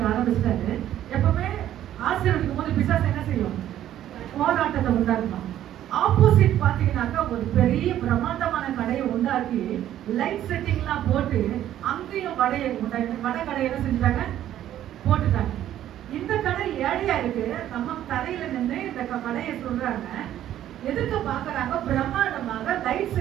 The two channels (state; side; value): quieter; left; 11.9 dB